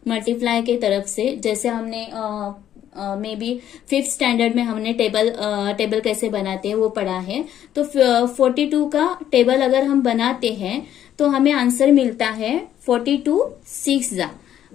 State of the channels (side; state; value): right; quieter; 10.9 dB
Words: मल्टीप्लाई के तरफ से, जैसे हमने मे बी 5th स्टैंडर्ड में हमने टेबल कैसे बनाते हैं वो पढ़ा है। तो 42 का टेबल अगर हम बनाते हैं तो हमें आंसर मिलता है 42 6 जा।